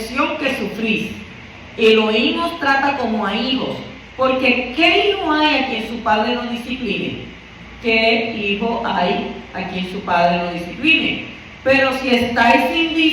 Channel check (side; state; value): both; identical; correlation 1.00